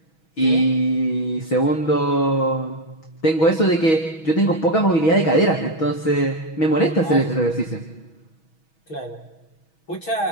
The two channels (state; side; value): late; right; 6.2 ms